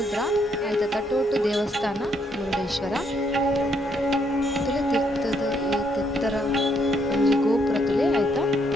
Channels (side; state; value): both; normal; correlation 0.72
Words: ಐತ ತಟೋಟು ದೇವಸ್ಥಾನ ಮುರುಡೇಶ್ವರ ತುಲೆ ತಿರ್ತದ ಈ ತಿತ್ತರ ಒಂಜಿ ಗೋಪುರ ತುಲೆ ಐತ